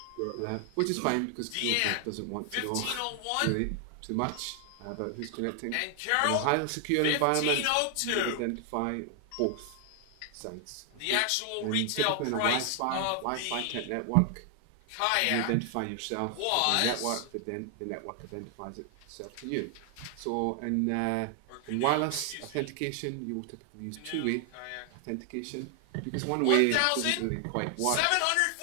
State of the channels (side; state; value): both; different; correlation 0.00